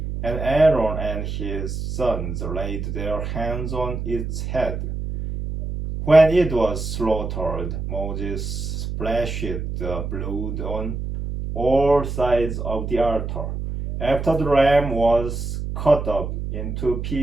and Aaron and his sons laid their hands on its head. When it was slaughtered, Moses splashed the blood on all sides of the altar. After the ram was cut up into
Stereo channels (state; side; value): noise; right; hum, 4 dB below the sound